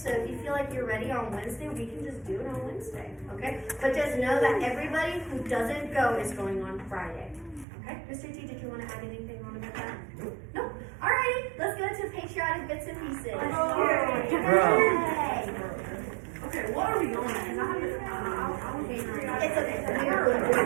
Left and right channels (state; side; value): drops out; left; at 7.7 s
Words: if you feel like you're ready on Wednesday, we can just do it on Wednesday, okay? But just know that everybody who doesn't go is going on Friday, okay? Mr. T, did you want to add anything on about that? No? Alrighty, let's go to patriotic bits and pieces. Yay! Okay, what are we on? Because I haven't. It's okay, we are going to do